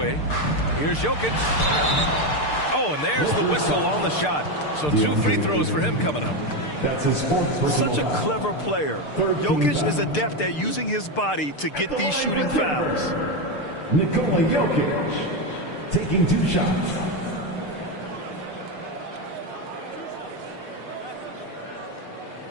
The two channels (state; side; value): late; right; 6.7 ms